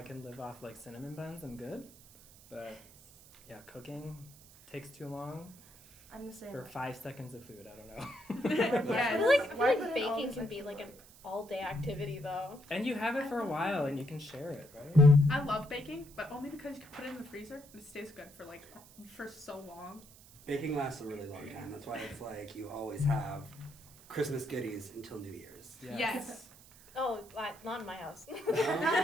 can live off cinnamon buns, I'm good. But yeah, cooking takes too long. I'm the same. For 5 seconds of food, I don't know. I feel like baking can be an all-day activity, though. And you have it for a while, and you can share it, right? I love baking, but only because you can put it in the freezer and it stays good for so long. Baking lasts a really long time. That's why it's you always have Christmas goodies until New Year's. Yes. Oh, not in my house.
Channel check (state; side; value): noise; right; hiss, 22 dB below the sound